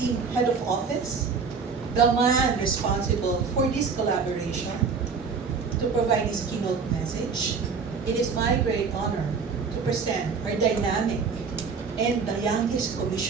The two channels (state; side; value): quieter; left; 5.3 dB